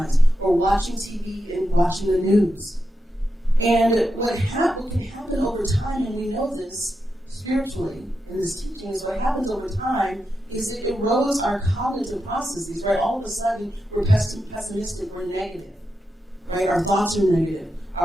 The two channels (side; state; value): both; normal; correlation 0.87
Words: or watching TV and watching the news. And what can happen over time, and we know this spiritually in this teaching, is what happens over time is it erodes our cognitive processes, right? All of a sudden, we're pessimistic, we're negative, right? Our thoughts are negative.